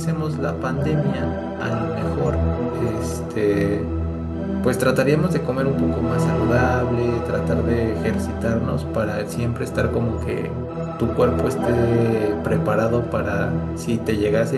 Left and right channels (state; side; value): identical; both; correlation 1.00